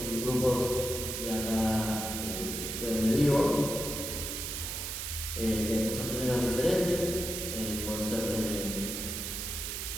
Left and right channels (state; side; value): noise; right; hiss, 4 dB below the sound